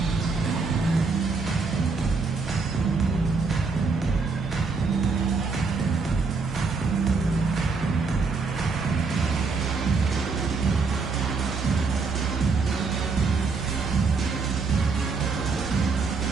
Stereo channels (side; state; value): left; quieter; 4.5 dB